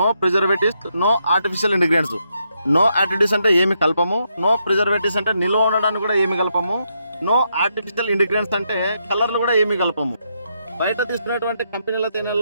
preservatives, no artificial ingredients. No additives అంటే ఏమి కలపము, నో ప్రిజర్వేటివ్స్ అంటే నిల్వ ఉండడానికి కూడా ఏమి కలపము, నో ఆర్టిఫిషియల్ ఇంగ్రీడియంట్స్ అంటే కలర్లు కూడా ఏమి కలపము. బయట తీసుకున్నటువంటి కంపెనీల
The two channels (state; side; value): inverted; both; correlation -0.79